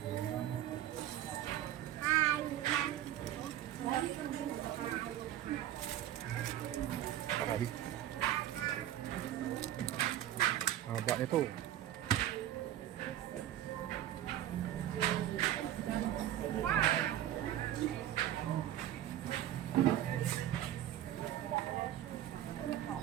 Ay. Haba nito.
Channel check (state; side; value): quieter; left; 12.3 dB